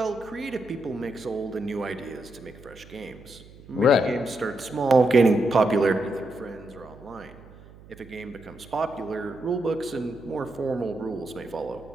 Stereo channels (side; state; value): right; noise; hum, 21 dB below the sound